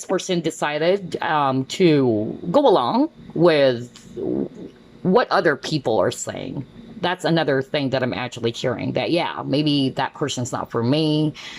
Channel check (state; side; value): identical; both; correlation 1.00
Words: person decided to go along with what other people are saying. That's another thing that I'm actually hearing, that, yeah, maybe that person's not for me.